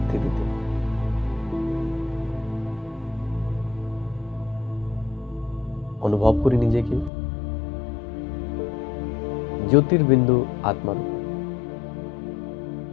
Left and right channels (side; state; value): right; drops out; at 7.1 s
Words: অনুভব করি নিজেকে জ্যোতির্বিন্দু আত্মার উপর।